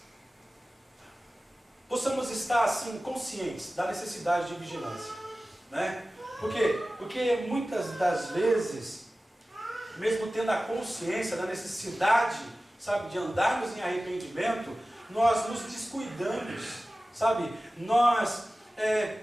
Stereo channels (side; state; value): both; normal; correlation 0.96